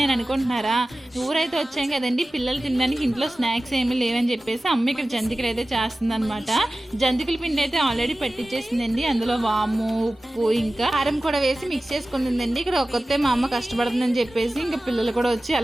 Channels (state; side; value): normal; both; correlation 0.96